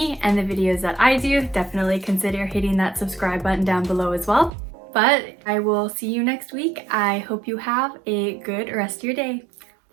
and the videos that I do, definitely consider hitting that subscribe button down below as well. But I will see you next week. I hope you have a good rest of your day.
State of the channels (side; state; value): left; drops out; at 4.5 s